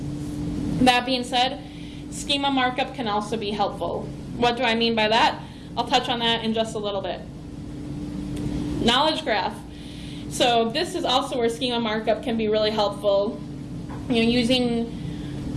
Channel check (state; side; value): identical; both; correlation 1.00